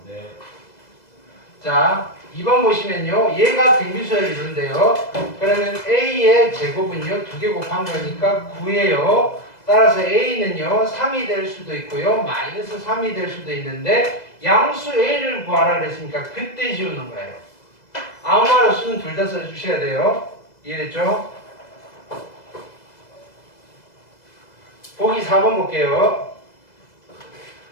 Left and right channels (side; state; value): right; late; 2.0 ms